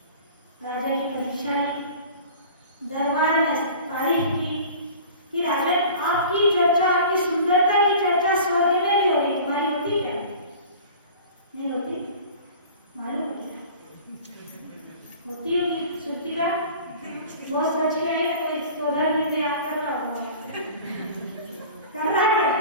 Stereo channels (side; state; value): both; inverted; correlation -0.41